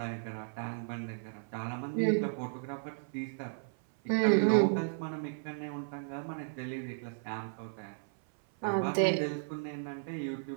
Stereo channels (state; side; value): silent; left; 55 dB below the other